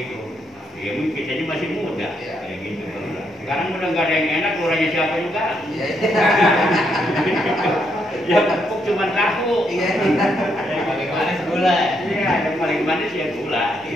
Ya mungkin kita ini masih muda kayak gitu. Sekarang udah nggak ada yang enak, lurahnya siapa juga. Ya pupuk cuma tahu. Yang paling manis gula. Iya, yang paling manis ya gula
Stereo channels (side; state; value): both; normal; correlation 0.77